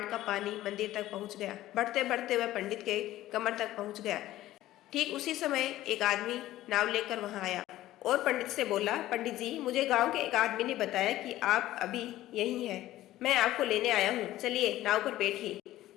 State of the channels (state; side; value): quieter; right; 14.9 dB